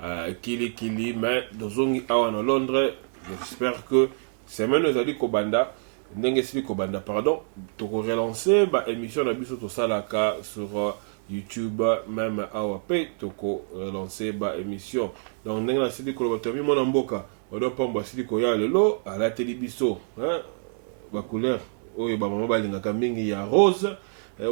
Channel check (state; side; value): silent; left; digital silence